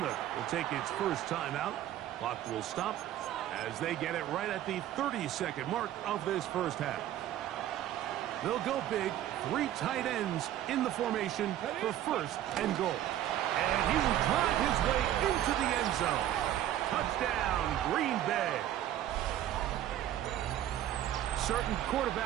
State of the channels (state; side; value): quieter; left; 12.3 dB